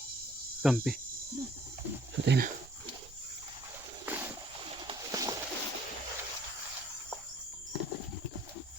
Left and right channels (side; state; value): right; noise; rumble, 20 dB below the sound